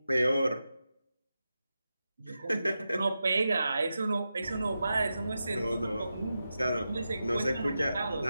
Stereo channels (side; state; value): both; inverted; correlation -0.90